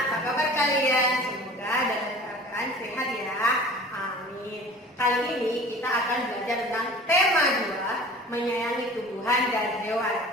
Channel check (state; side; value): normal; both; correlation 0.43